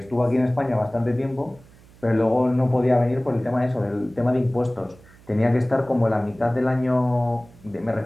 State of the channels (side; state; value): right; noise; hum, 25 dB below the sound